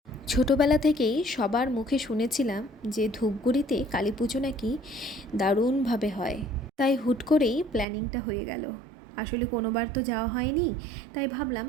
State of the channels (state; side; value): drops out; left; at 7.9 s